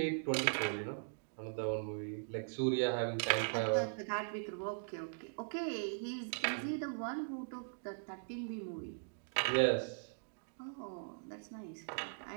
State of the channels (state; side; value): silent; left; digital silence